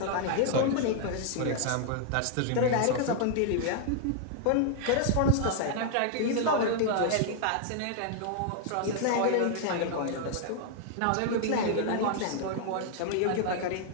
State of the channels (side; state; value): both; different; correlation 0.00